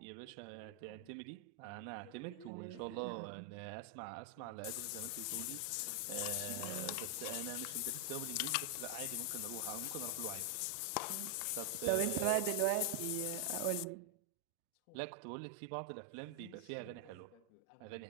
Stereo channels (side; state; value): both; different; correlation 0.00